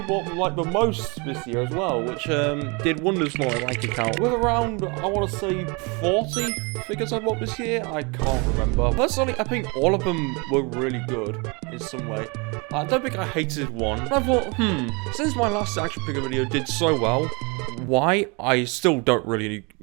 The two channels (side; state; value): left; quieter; 30.0 dB